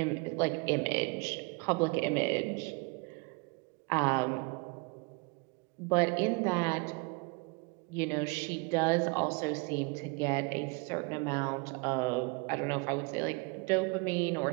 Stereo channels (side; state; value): left; quieter; 29.9 dB